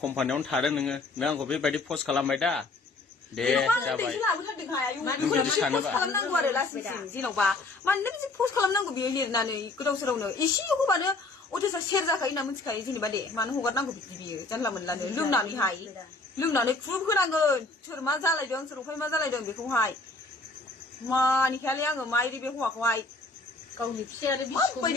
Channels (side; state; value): right; quieter; 3.2 dB